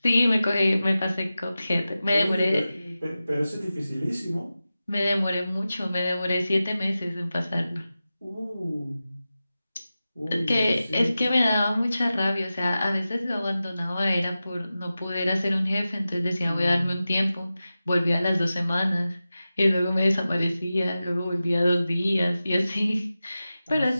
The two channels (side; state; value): both; inverted; correlation -0.94